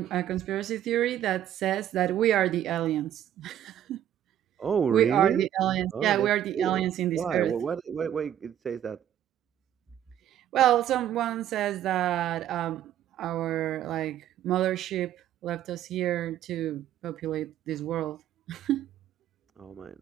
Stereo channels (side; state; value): left; quieter; 11.2 dB